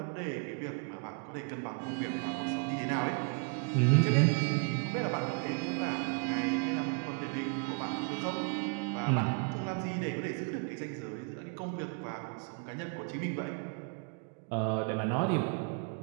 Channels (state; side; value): quieter; left; 37.6 dB